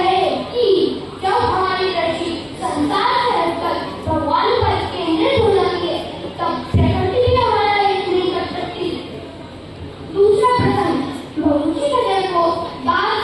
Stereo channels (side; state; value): both; identical; correlation 1.00